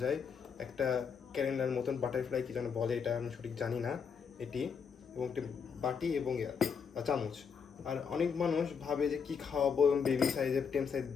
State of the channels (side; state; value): right; quieter; 6.4 dB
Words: যায়, একটা ক্যালেন্ডার মতন বাটারফ্লাই কি যেন বলে, এটা আমি সঠিক জানি না এটি, এবং একটি বাটি এবং চামচ। আর অনেক মানুষ ভাবে যে কি খাওয়াবো এবং বেবি সাইজের টেম সাইজ